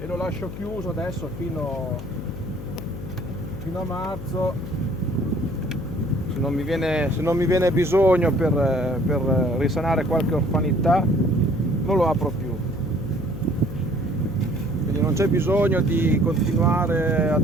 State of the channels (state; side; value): noise; left; hum, 10 dB below the sound